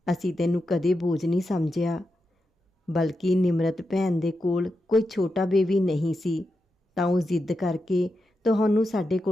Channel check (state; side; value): normal; both; correlation 0.88